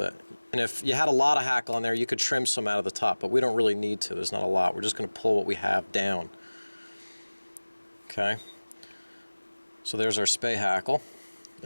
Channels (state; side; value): inverted; both; correlation -1.00